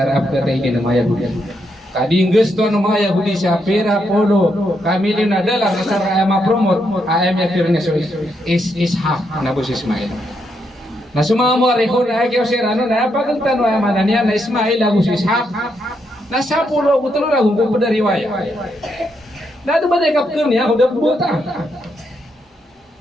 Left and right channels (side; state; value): both; normal; correlation 0.79